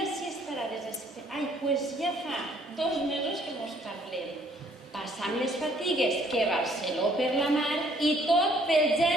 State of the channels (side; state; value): both; normal; correlation 0.63